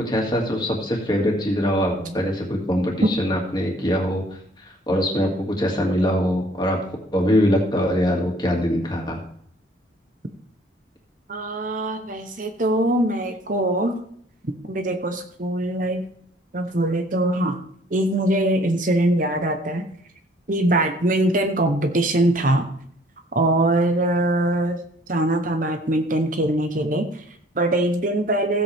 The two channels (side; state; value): both; normal; correlation 0.57